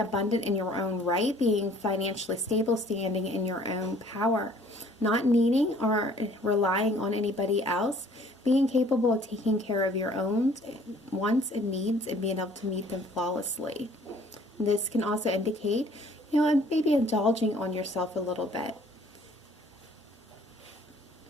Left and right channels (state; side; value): normal; both; correlation 0.56